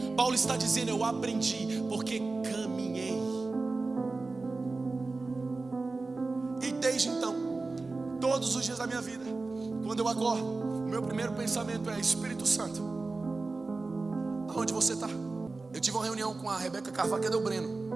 Paulo está dizendo: eu aprendi porque caminhei. E desde então, todos os dias da minha vida, quando eu acordo, o meu primeiro pensamento é: Espírito Santo, aonde você está? Eu tive uma reunião com a Rebeca Carvalho, cadê o Breno?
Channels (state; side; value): quieter; left; 3.6 dB